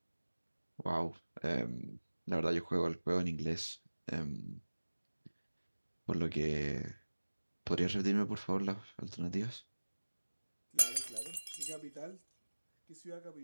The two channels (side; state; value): both; inverted; correlation -1.00